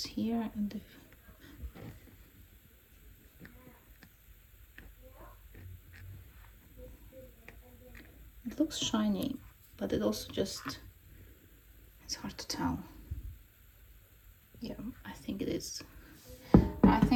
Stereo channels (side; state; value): both; identical; correlation 1.00